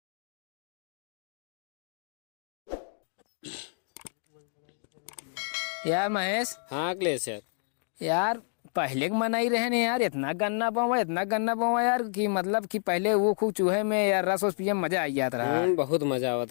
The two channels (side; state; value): right; silent; 58 dB below the other